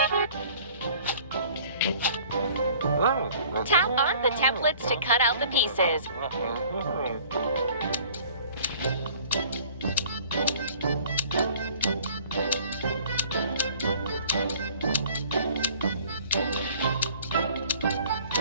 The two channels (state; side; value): inverted; both; correlation -0.52